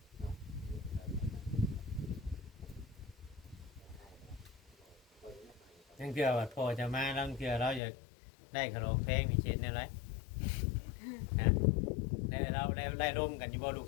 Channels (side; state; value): right; drops out; at 7.8 s